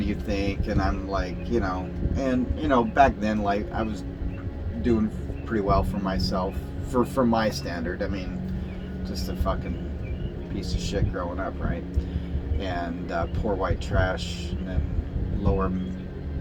you think? And I'm like, and back then, like, I was doing pretty well for myself, for my standard. I mean, just a fucking piece of shit growing up, right? And poor white trash, and then lower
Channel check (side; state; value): both; identical; correlation 1.00